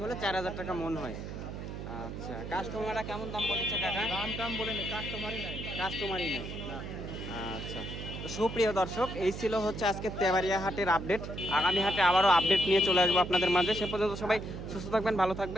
হলে 4000 টাকা মন হয়। আচ্ছা, কাস্টমাররা কেমন দাম বলেছে কাকা? দাম বলেনি, কাস্টমারই নাই। কাস্টমারই নেই। আচ্ছা, তো সুপ্রিয় দর্শক, এই ছিল হচ্ছে আজকে তেবাড়িয়া হাটের আপডেট। আগামী হাটে আবারও আপডেট নিয়ে চলে আসবো আপনাদের মাঝে। সে পর্যন্ত সবাই সুস্থ থাকবেন, ভালো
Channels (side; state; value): right; noise; hum, 8 dB below the sound